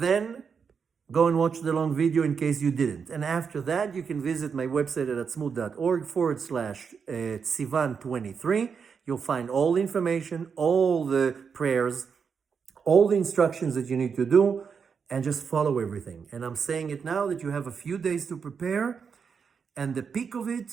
Go and watch the long video in case you didn't. And after that, you can visit my website at atzmut.org/Sivan23. You'll find all the information, all the prayers, all the instructions that you need to do, and just follow everything. And I'm saying it now that you have a few days to prepare. And the peak of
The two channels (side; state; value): left; quieter; 6.2 dB